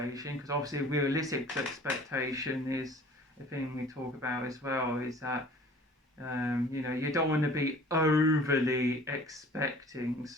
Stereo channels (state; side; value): normal; both; correlation 0.48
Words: because obviously realistic expectation is a thing we talk about as well, is that you don't want to be overly expecting,